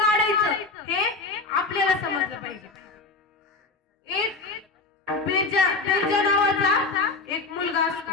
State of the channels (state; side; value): quieter; right; 3.8 dB